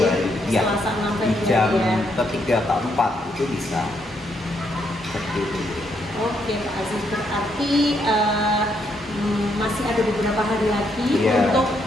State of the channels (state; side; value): normal; both; correlation 0.75